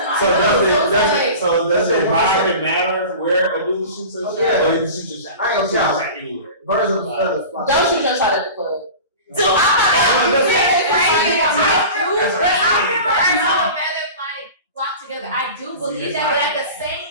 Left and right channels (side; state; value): both; inverted; correlation -0.36